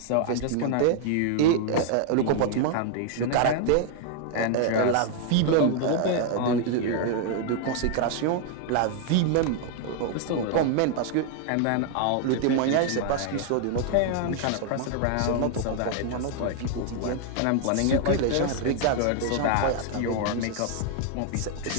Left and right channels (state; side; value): different; both; correlation 0.00